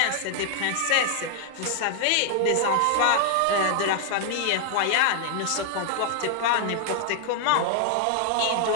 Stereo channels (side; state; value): both; different; correlation 0.00